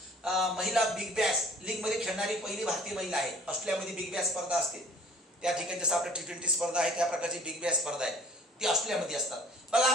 महिला बिग बॅश लीग मध्ये खेळणारी पहिली भारतीय महिला आहे. ऑस्ट्रेलियामध्ये बिग बॅश स्पर्धा असते, त्या ठिकाणी जसं आपल्या T20 स्पर्धा आहे त्या प्रकारची बिग बॅश स्पर्धा आहे, ती ऑस्ट्रेलियामध्ये असतात. बघा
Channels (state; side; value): normal; both; correlation 0.52